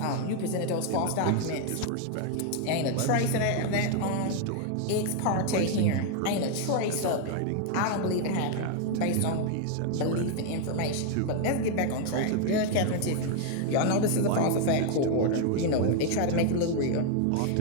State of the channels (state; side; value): different; both; correlation 0.00